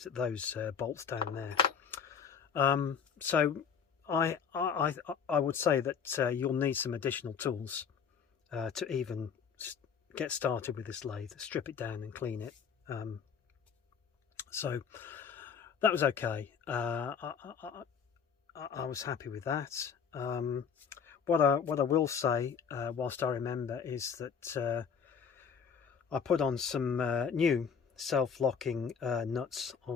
at those bolts down there. So I would say that you'll need some additional tools to even get started with this lathe. Strip it down and clean it. So that was okay. I was happy with that. What I will say, whilst I remember, is that I put on some new self-locking nuts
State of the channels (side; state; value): right; quieter; 6.7 dB